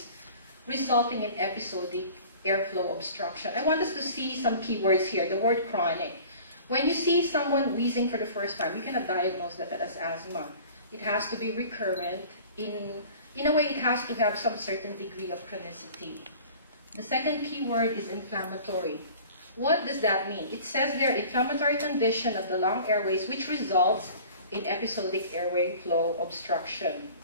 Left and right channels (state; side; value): inverted; both; correlation -0.44